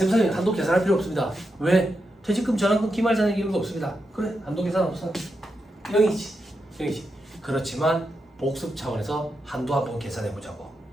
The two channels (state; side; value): normal; both; correlation 0.86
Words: 한도 계산할 필요 없습니다. 왜? 퇴직금 전환금 기말잔액 이런 거 없습니다. 그래 한도 계산 없어. 0이지. 그렇지만 복습 차원에서 한도 한번 계산해 보자고.